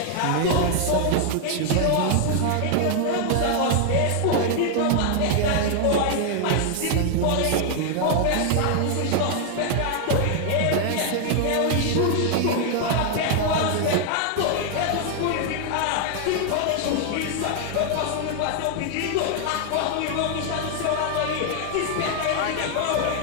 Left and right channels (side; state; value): both; different; correlation 0.00